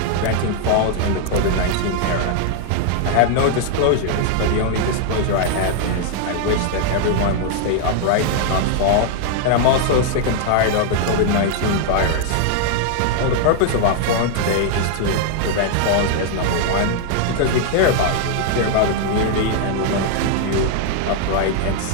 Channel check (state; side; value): different; both; correlation 0.00